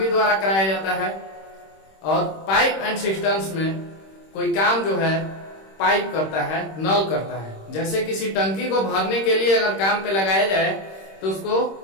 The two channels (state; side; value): late; right; 26 ms